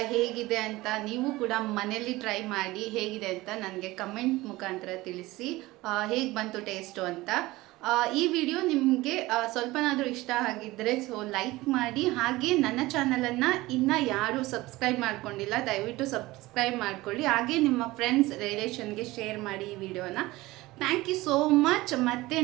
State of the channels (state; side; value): quieter; left; 19.3 dB